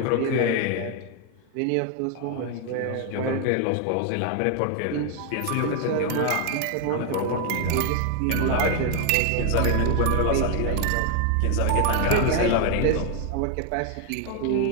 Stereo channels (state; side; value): different; both; correlation 0.01